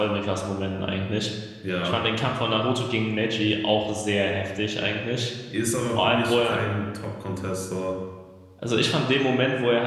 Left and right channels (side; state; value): both; identical; correlation 1.00